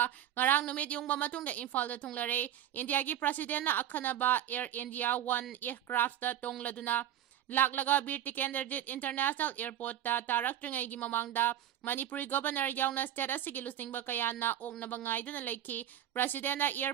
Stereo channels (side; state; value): left; quieter; 11.2 dB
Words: ngarang numit yungba matungda Imphal da thunglare India gi president na akhanaba Air India 1 aircraft da tongladuna laklaga Bir Tikenderjit International Airport ta taraktrngay gi mamangda Manipuri Governor yauna state asigi lusingba kayana oknaba ngaiduna leiki President na